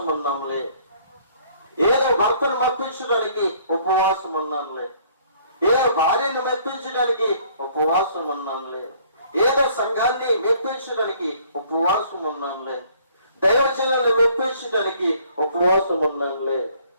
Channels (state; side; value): inverted; both; correlation -0.59